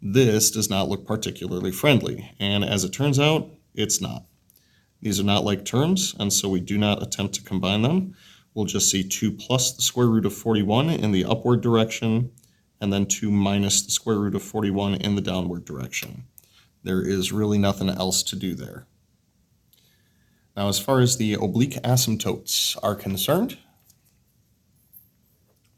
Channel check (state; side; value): identical; both; correlation 1.00